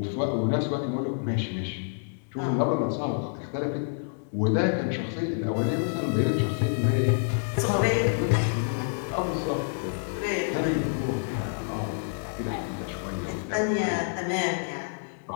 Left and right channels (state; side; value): silent; right; digital silence